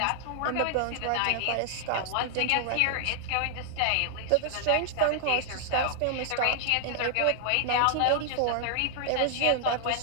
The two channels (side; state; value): both; different; correlation -0.01